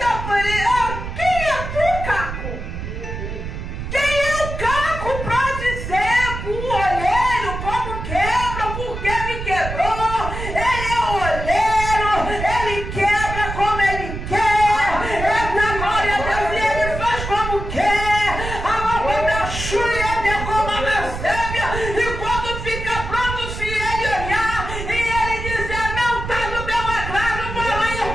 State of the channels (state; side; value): noise; right; rumble, 7 dB below the sound